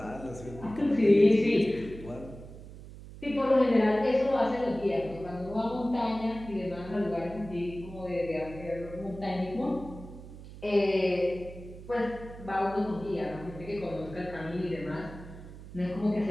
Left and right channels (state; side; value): noise; right; hum, 15 dB below the sound